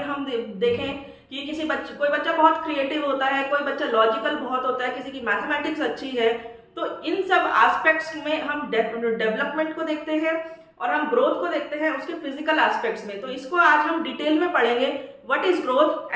हम देखें कि किसी बच्चे, कोई बच्चा बहुत क्रिएटिव होता है, कोई बच्चा लॉजिकल बहुत होता है, किसी की मैथमेटिक्स अच्छी है। तो इन सब एस्पेक्ट्स में हम डेवलपमेंट को देखते हैं और हम ग्रोथ को देखते हैं उसके फिजिकल एस्पेक्ट्स में। तो इसको आज हम डिटेल में पढ़ेंगे, what is growth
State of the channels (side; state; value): both; identical; correlation 1.00